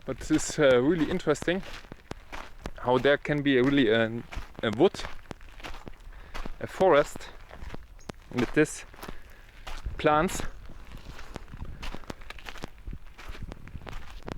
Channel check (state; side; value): identical; both; correlation 1.00